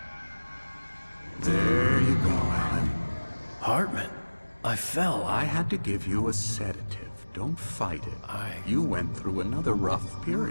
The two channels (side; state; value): both; inverted; correlation -1.00